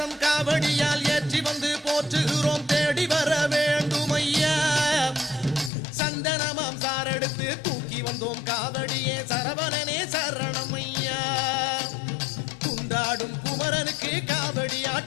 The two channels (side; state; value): right; drops out; at 5.7 s